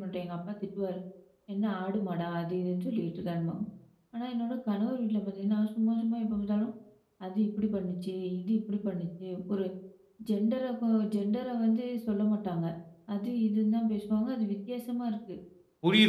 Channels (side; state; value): both; identical; correlation 1.00